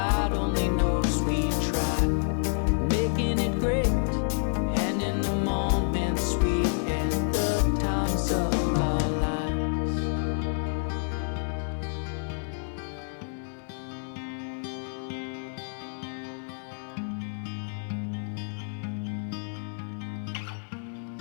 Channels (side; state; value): right; silent; digital silence